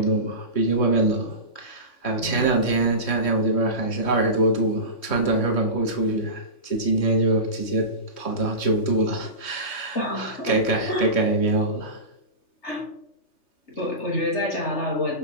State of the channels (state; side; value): late; right; 3.2 ms